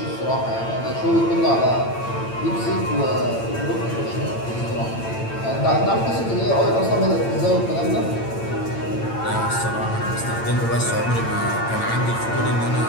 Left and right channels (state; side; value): late; right; 8.9 ms